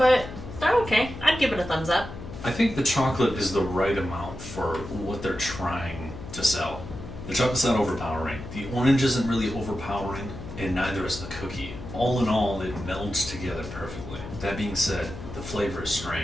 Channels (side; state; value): left; noise; hum, 11 dB below the sound